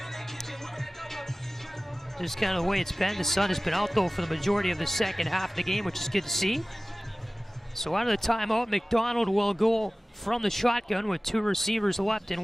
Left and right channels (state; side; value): normal; both; correlation 0.97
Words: Just kind of the way it's been. The sun has been out though for the majority of the second half of the game, which is good to see. So out of the timeout, McDonald will go from the shotgun with 2 receivers left